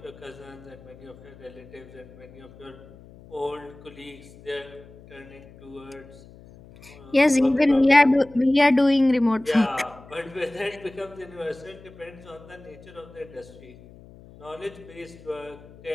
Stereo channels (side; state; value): left; noise; hum, 21 dB below the sound